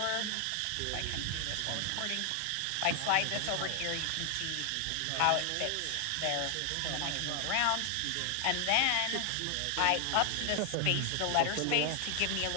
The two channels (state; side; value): different; both; correlation 0.00